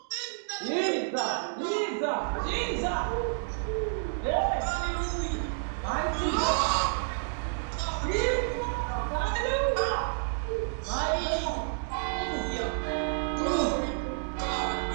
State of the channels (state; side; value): silent; left; digital silence